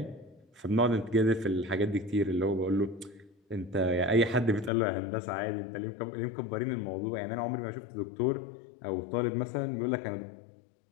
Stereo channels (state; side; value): drops out; right; at 4.7 s